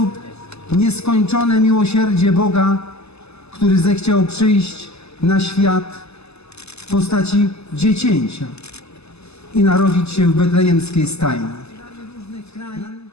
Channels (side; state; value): right; late; 0.79 ms